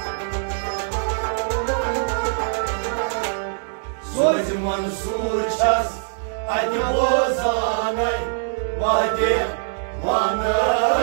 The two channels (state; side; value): silent; left; digital silence